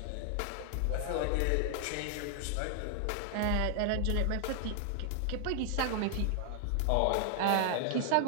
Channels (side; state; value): both; different; correlation 0.00